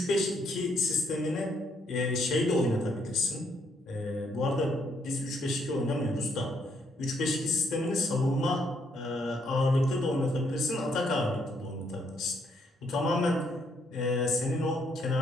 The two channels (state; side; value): normal; both; correlation 0.71